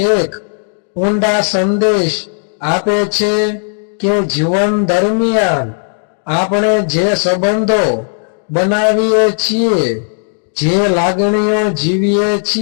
એક ઊંડા સંદેશ આપે છે કે જીવન દરમિયાન આપણે જે સંબંધો બનાવીએ છીએ, જે લાગણીઓ જીવીએ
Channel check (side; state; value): right; silent; digital silence